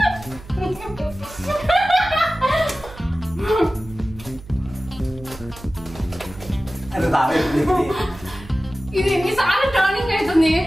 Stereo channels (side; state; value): right; noise; hum, 17 dB below the sound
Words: ఇది ఎన్నిసార్లు టర్నింగ్ అవుతుంది?